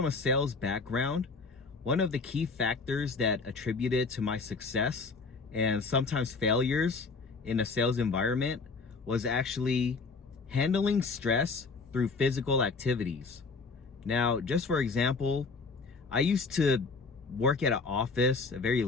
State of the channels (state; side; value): quieter; right; 4.3 dB